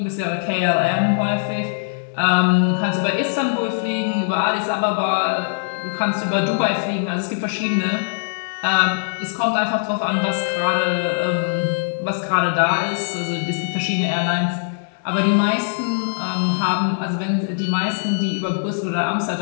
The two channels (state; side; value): silent; right; digital silence